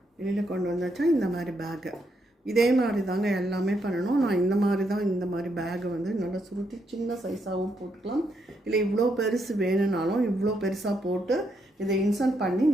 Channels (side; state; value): both; normal; correlation 0.78